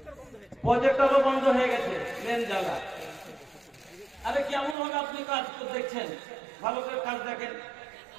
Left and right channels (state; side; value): drops out; left; at 4.8 s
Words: প্রজেক্টরও বন্ধ হয়ে গেছে মেন জ্বালা আরে কেমন হবে আপনি কাজ দেখছেন ভালো করে কাজ দেখেন